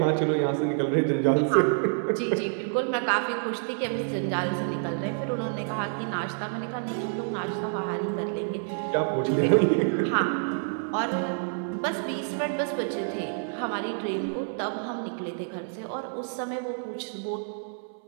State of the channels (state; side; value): silent; left; 59 dB below the other